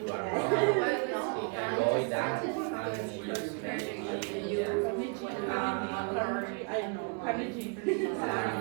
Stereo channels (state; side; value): quieter; left; 36.9 dB